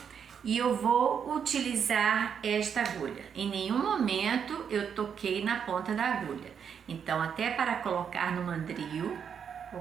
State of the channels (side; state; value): left; quieter; 7.4 dB